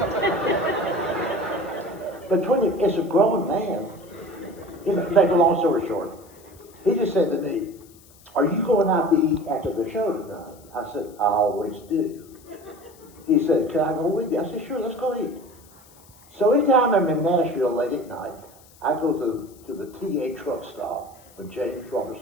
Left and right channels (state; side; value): noise; left; hiss, 26 dB below the sound